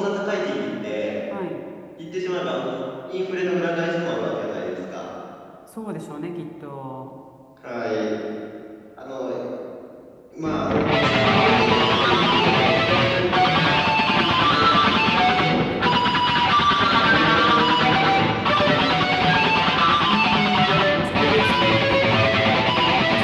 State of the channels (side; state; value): both; identical; correlation 1.00